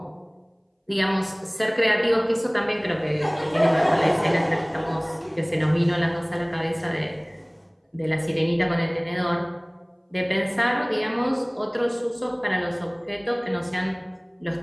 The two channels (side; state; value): both; identical; correlation 1.00